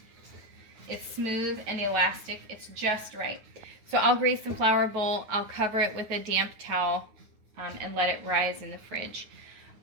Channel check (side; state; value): left; late; 9.5 ms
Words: It's smooth and elastic. It's just right. So I'll grease the flour bowl. I'll cover it with a damp towel and let it rise in the fridge.